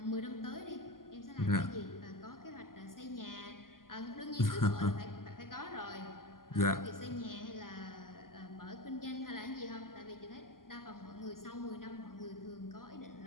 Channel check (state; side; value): late; right; 0.91 ms